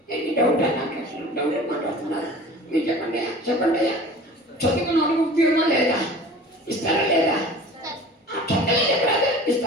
ఎన్ని డౌట్ నాకు డౌట్ మాట్లాడుతున్నారు మీరు చెప్పండి. చెప్పండి అయ్యా. చదువుకున్న వాళ్ళకి ఉద్యోగమా లేదా? ఇస్తారా లేదా? చక్కగా చెప్పరాదు.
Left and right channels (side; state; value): both; normal; correlation 0.41